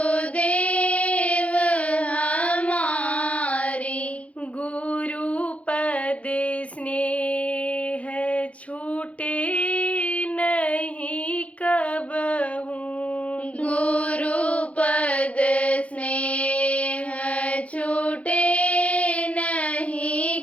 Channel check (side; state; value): right; late; 0.064 ms